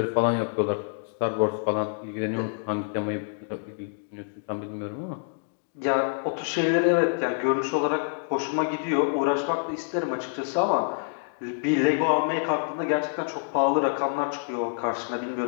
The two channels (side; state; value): right; silent; digital silence